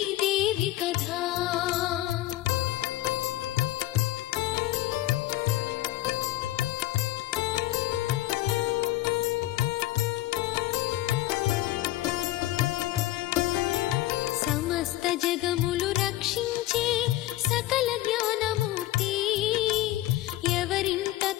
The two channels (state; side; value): quieter; right; 16.0 dB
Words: కథ సమస్త జగములు రక్షించే సకల జ్ఞానమూర్తి ఎవరింట